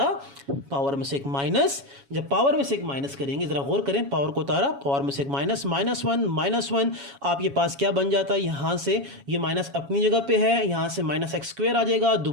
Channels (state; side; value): late; left; 7.2 ms